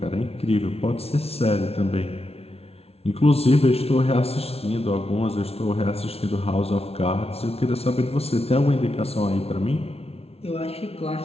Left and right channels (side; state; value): right; late; 0.30 ms